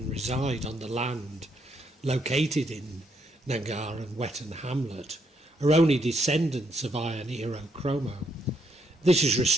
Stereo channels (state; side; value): normal; both; correlation 0.75